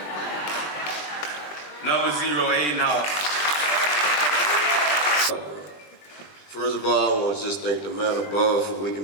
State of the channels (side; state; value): right; late; 20 ms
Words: Number 0, Aiden Hall. First of all, I want to just thank the man above for